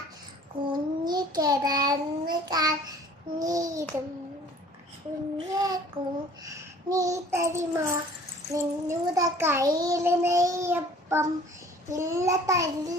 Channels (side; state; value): both; normal; correlation 0.51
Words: കുഞ്ഞി കിടന്ന് കഞ്ഞിരും കുഞ്ഞെ നീ തരുമോ നിന്നുടെ കയ്യില് നെയ്യപ്പം ഇല്ല